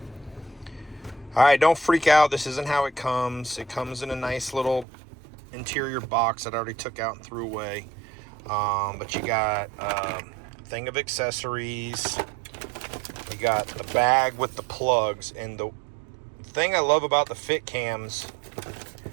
All right, don't freak out. This isn't how it comes. It comes in a nice little interior box that I already took out and threw away. But you got a thing of accessories. You got the bag with the plugs. And the thing I love about the FitCams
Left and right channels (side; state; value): left; drops out; at 4.9 s